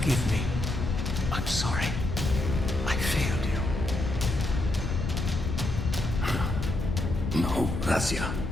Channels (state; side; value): noise; left; rumble, 2 dB below the sound